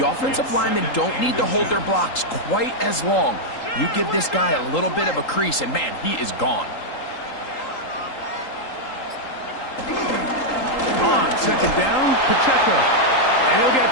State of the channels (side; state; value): right; late; 3.8 ms